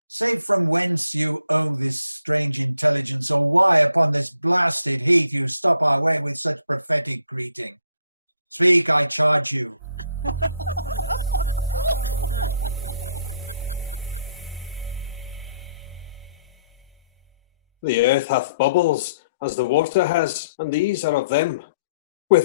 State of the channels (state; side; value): inverted; both; correlation -0.67